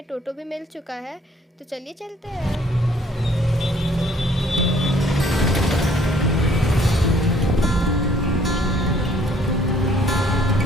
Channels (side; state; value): both; normal; correlation 0.61